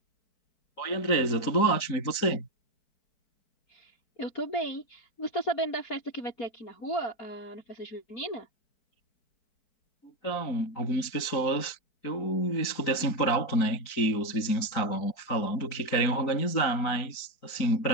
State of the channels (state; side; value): late; right; 4.6 ms